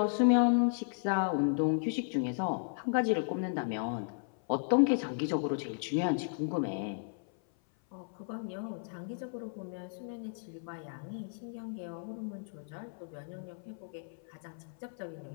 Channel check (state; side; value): silent; right; 55 dB below the other